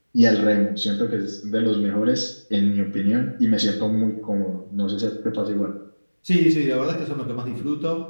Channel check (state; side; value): inverted; both; correlation -1.00